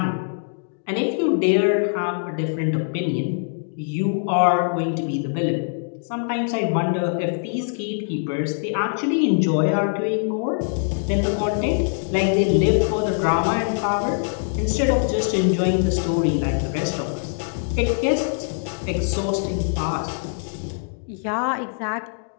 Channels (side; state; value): right; silent; digital silence